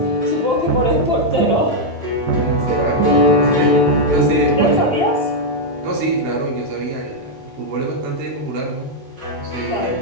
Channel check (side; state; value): both; normal; correlation -0.02